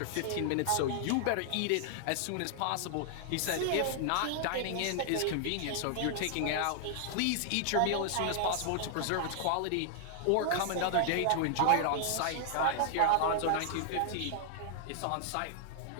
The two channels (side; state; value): both; different; correlation 0.00